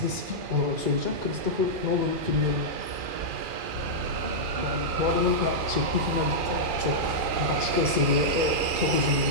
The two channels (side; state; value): left; late; 2.4 ms